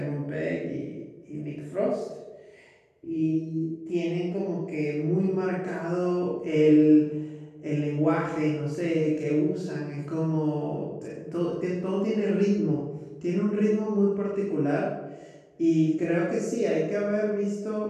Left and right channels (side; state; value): both; identical; correlation 1.00